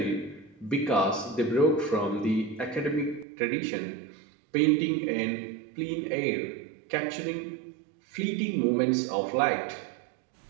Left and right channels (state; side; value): drops out; left; at 3.2 s